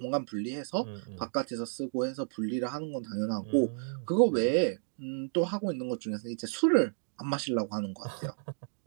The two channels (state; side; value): silent; left; digital silence